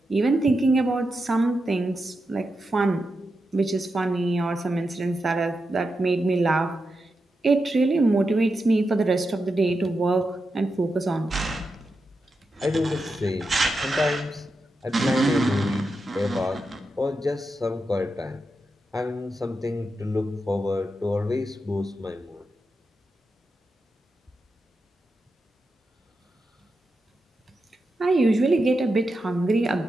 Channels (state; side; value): normal; both; correlation 0.88